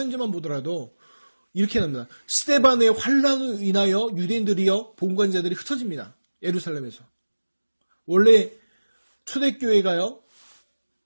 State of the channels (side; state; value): both; inverted; correlation -1.00